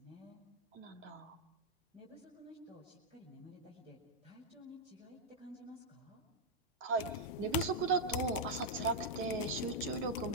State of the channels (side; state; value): both; normal; correlation -0.03